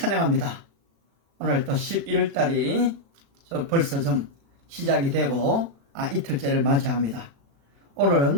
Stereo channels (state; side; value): late; left; 36 ms